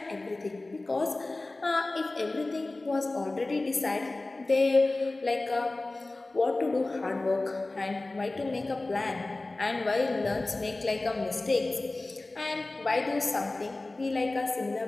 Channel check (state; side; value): quieter; right; 3.0 dB